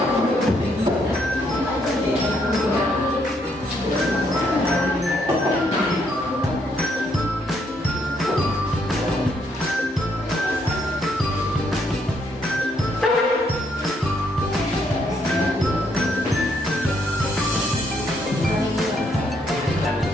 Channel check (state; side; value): normal; both; correlation 0.73